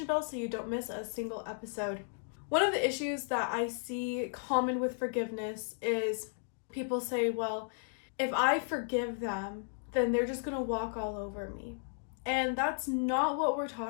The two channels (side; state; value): right; silent; digital silence